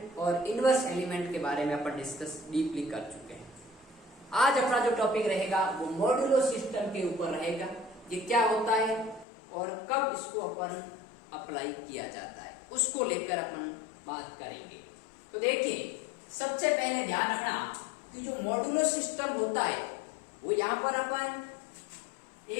और इनवर्स एलिमेंट के बारे में अपन डिस्कस डीपली कर चुके हैं। आज अपना जो टॉपिक रहेगा वो मॉड्यूलो सिस्टम के ऊपर रहेगा। ये क्या होता है और कब इसको अपन अप्लाई किया जाता है उसको लेकर अपन बात करेंगे। तो देखिए, सबसे पहले ध्यान रखना कि जो मॉड्यूलो सिस्टम होता है वो यहाँ पर अपन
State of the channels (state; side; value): drops out; right; at 9.2 s